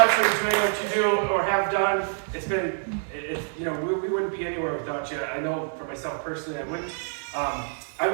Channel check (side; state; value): left; silent; digital silence